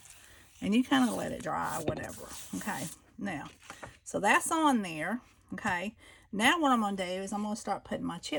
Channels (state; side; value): identical; both; correlation 1.00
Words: And you kind of let it dry or whatever, okay? Now, so that's on there, okay? Now what I'm going to do is I'm going to start putting my